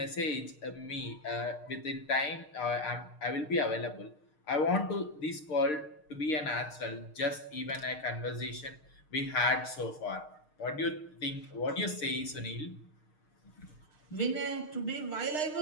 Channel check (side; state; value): right; late; 6.5 ms